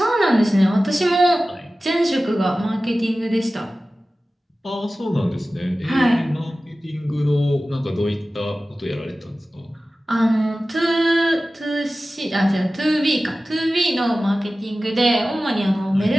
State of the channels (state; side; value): normal; both; correlation 0.96